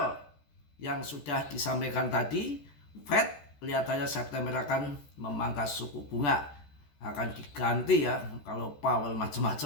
yang sudah disampaikan tadi. Fed kelihatannya September akan memangkas suku bunga. Akan diganti ya kalau Powell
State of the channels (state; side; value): late; right; 14 ms